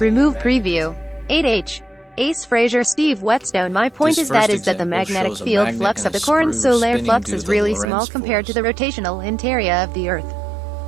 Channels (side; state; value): left; drops out; at 7.9 s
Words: preview. 8H. Ace Fraser. Steve Whetstone. My point is that the magnetic field flux of the current solar flux is really small compared to the rotational interior of the Earth.